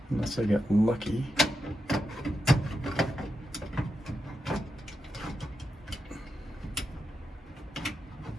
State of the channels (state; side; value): normal; both; correlation 0.87